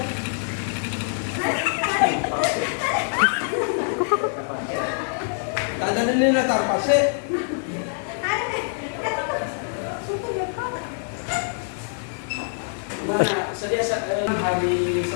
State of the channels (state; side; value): silent; right; digital silence